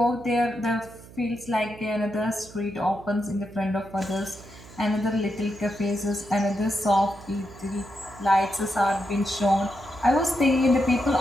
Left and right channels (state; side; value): noise; right; hum, 19 dB below the sound